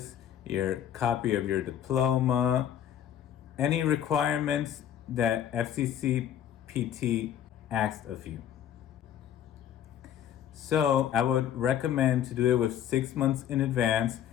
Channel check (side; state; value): right; quieter; 10.1 dB